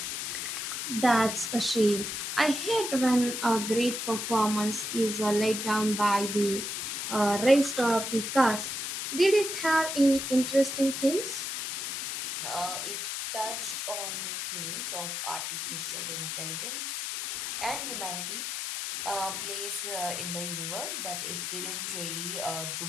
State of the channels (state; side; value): noise; left; hiss, 3 dB below the sound